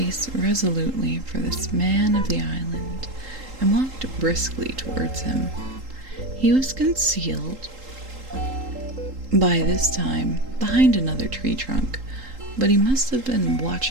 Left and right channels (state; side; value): late; left; 3.8 ms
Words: resolutely for this man of the island, and walked briskly towards him. He was concealed by this time behind another tree trunk, but he must have been